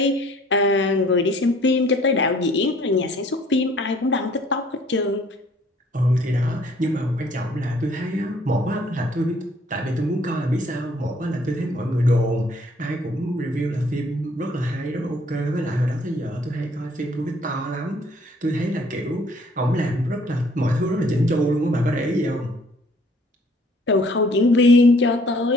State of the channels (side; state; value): both; normal; correlation 0.59